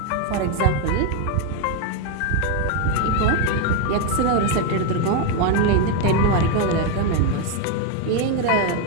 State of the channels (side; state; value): both; different; correlation 0.01